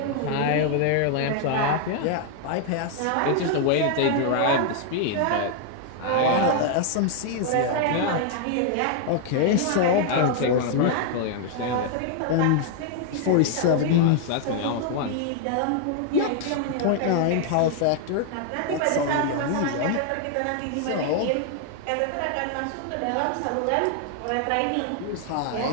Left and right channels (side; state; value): both; different; correlation 0.00